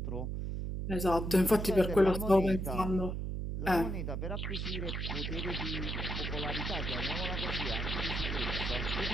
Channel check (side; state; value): right; noise; hum, 3 dB below the sound